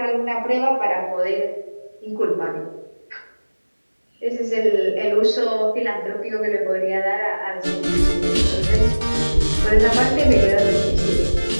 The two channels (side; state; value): both; inverted; correlation -1.00